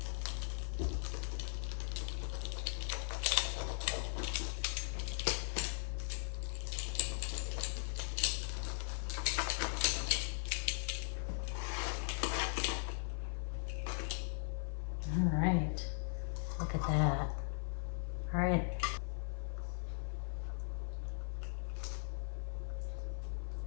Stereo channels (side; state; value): right; silent; 52 dB below the other